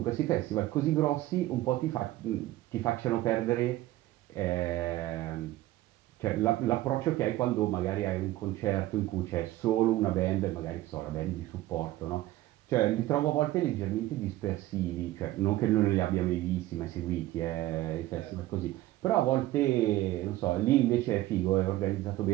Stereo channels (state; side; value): quieter; left; 16.1 dB